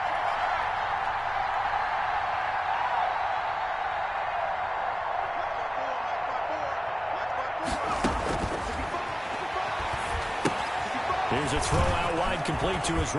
Here's a throw out wide, complete to his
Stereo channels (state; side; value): identical; both; correlation 1.00